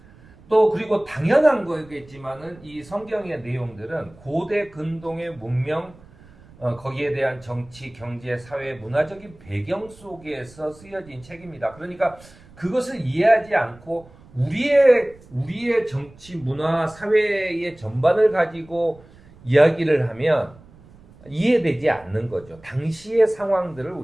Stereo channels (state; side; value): noise; right; rumble, 24 dB below the sound